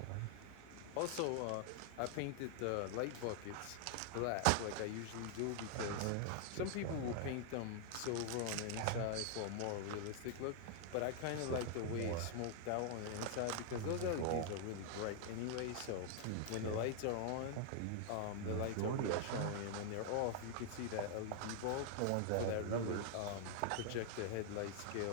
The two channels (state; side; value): different; both; correlation 0.00